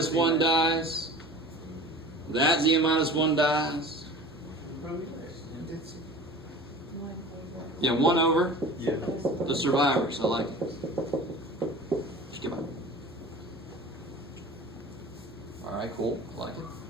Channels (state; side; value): normal; both; correlation 0.40